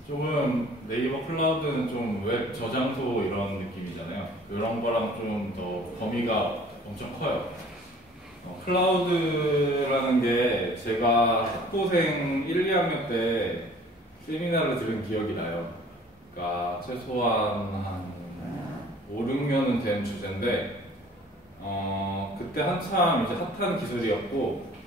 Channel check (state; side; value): normal; both; correlation 0.51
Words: 조금 네이버 클라우드는 좀 웹 저장소 이런 느낌이잖아요. 이런 거랑 좀 더 범위가 엄청 커요. 클라우드라는 게 제가 학부생 1, 2학년 때 세미나를 들은 기억이 나요. 그러니까 최소한 한 5, 6년은 된 주제인데 그때 한참 이제 핫한 기술이었고